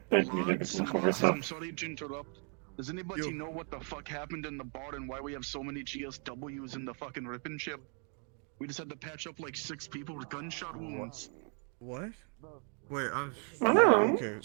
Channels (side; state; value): left; quieter; 39.7 dB